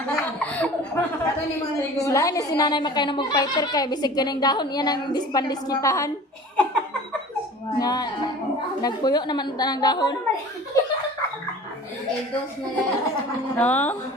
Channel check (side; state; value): both; normal; correlation 0.42